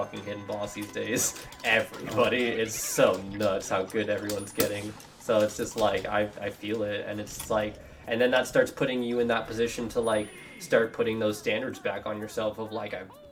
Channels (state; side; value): identical; both; correlation 1.00